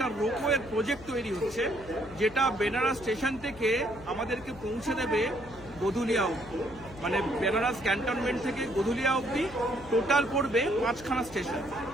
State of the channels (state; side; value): noise; left; hum, 18 dB below the sound